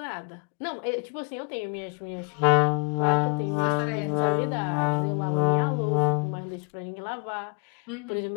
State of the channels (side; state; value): right; quieter; 37.4 dB